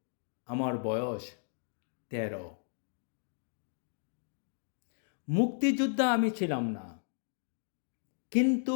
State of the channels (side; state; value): right; silent; digital silence